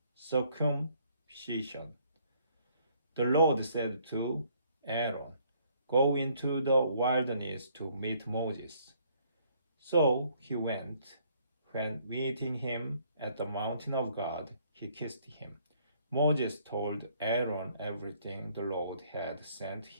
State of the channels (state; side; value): inverted; both; correlation -0.64